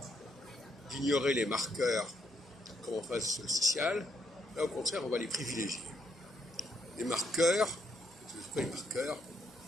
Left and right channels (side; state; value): both; normal; correlation 0.75